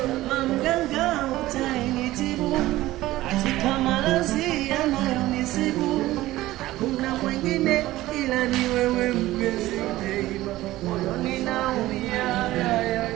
kama mganga utainitibu, katika maradhi yanayonisibu. Hakuna mwingine ila ni wewe mpenzi, moyoni naumia.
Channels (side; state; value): left; quieter; 16.6 dB